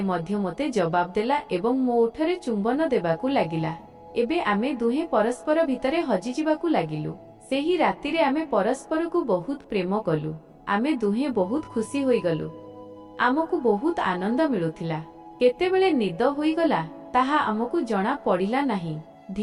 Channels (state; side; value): identical; both; correlation 1.00